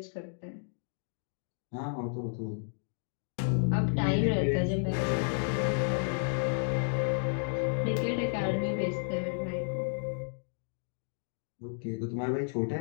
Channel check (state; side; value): silent; right; digital silence